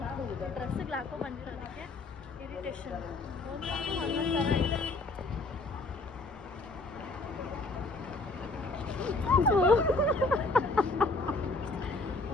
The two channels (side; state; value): right; quieter; 3.3 dB